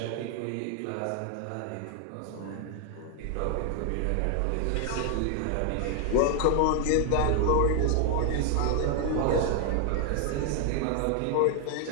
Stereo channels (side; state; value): both; different; correlation 0.00